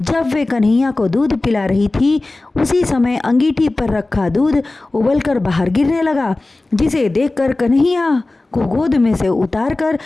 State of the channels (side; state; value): right; quieter; 3.0 dB